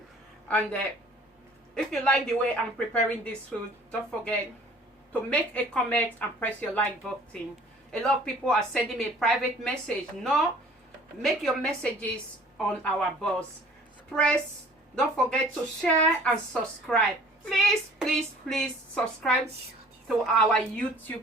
And if you like the way I'm preparing this food, don't forget to make a comment and press your like button. A lot of people are sending me a private message. No, make your messages on our box. Don't forget to share and subscribe. Please subscribe to our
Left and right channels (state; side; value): normal; both; correlation 0.51